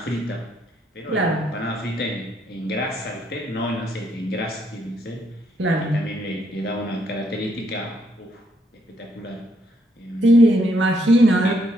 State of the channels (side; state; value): both; normal; correlation 0.73